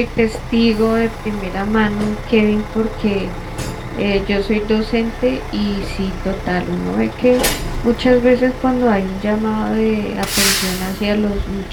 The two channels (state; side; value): identical; both; correlation 1.00